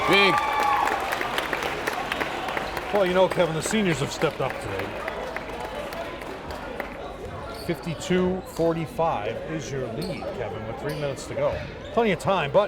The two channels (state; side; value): identical; both; correlation 1.00